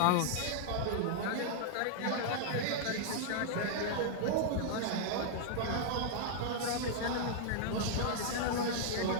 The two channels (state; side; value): different; both; correlation -0.01